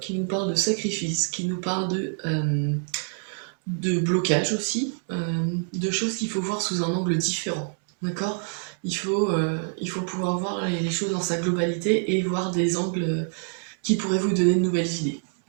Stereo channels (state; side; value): silent; left; 61 dB below the other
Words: nous parle de sacrifice, qui nous parle de blocage aussi, de choses qu'il faut voir sous un angle différent. D'accord ? Il faut pouvoir voir les choses dans sa globalité et voir des angles qui pourraient vous donner de nouvelles idées.